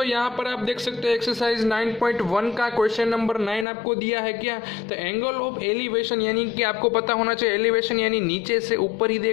यहाँ पर आप देख सकते हैं एक्सरसाइज 9.1 का क्वेश्चन नंबर 9 आपको दिया है क्या। तो एंगल ऑफ एलिवेशन यानी कि आपको पता होना चाहिए एलिवेशन यानी नीचे से ऊपर ही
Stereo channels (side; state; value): right; drops out; at 3.7 s